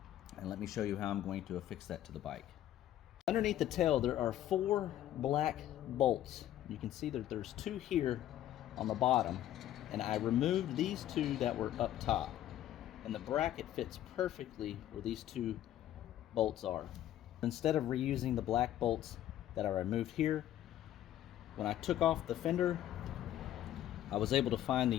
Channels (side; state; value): right; quieter; 12.4 dB